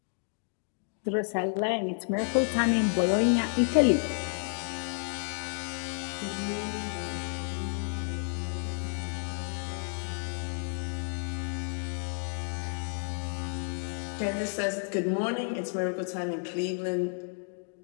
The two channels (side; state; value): right; silent; 57 dB below the other